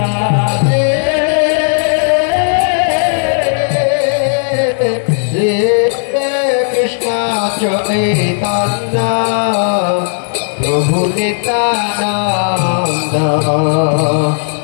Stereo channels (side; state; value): right; silent; digital silence